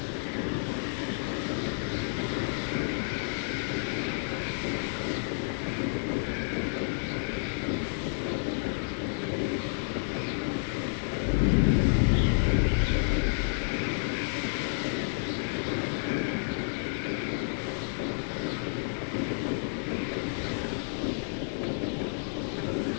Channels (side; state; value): right; silent; digital silence